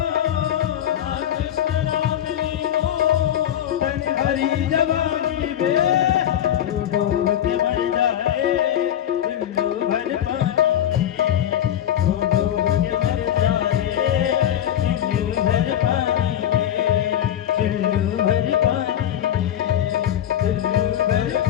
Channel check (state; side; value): quieter; right; 10.7 dB